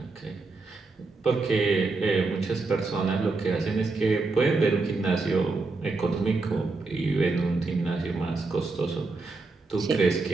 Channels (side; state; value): left; quieter; 3.7 dB